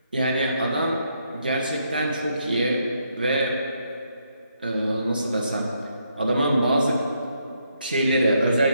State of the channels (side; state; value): both; inverted; correlation -0.76